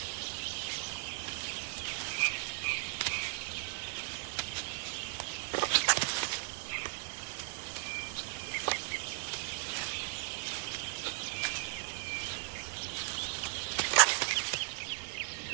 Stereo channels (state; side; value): silent; left; digital silence